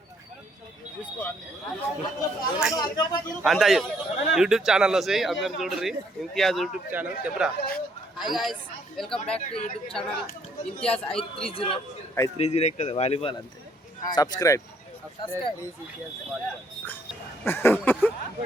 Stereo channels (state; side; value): normal; both; correlation 0.67